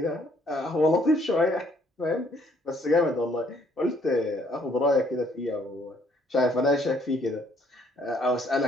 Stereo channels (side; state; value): both; normal; correlation 0.65